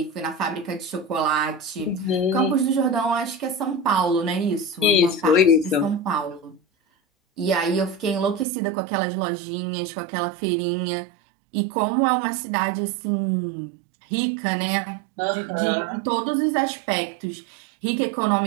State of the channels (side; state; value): left; drops out; at 8.5 s